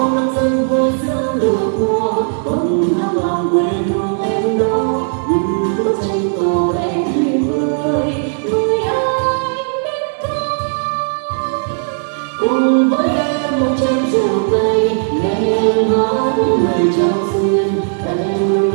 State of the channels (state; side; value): silent; left; digital silence